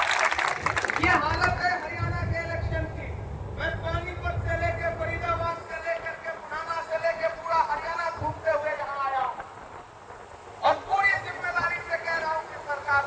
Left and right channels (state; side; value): identical; both; correlation 1.00